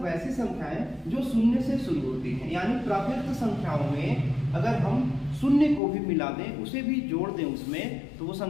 संख्याएं जो शून्य से शुरू होती हैं, यानी प्राकृत संख्याओं में अगर हम शून्य को भी मिला दें, उसे भी जोड़ दें उसमें, तो वो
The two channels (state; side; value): drops out; right; at 5.8 s